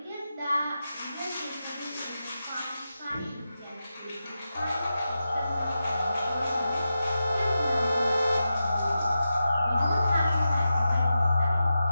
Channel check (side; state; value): both; inverted; correlation -0.90